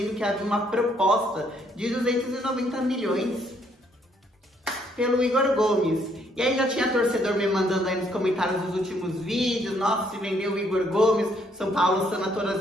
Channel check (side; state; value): both; normal; correlation 0.69